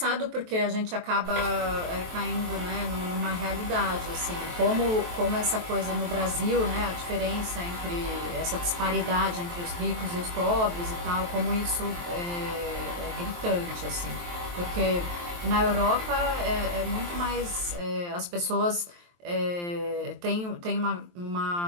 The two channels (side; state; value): left; late; 23 ms